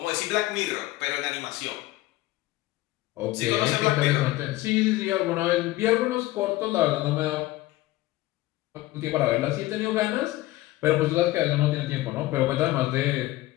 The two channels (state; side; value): quieter; right; 17.3 dB